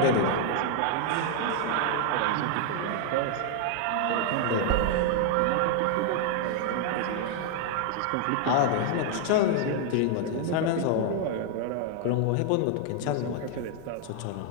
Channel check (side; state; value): both; different; correlation 0.00